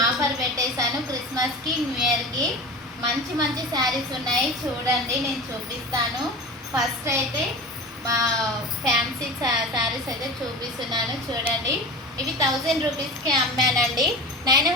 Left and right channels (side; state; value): both; normal; correlation 0.32